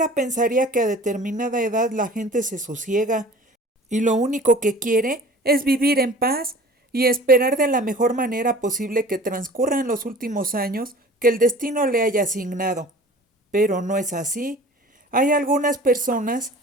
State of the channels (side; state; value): both; normal; correlation 0.44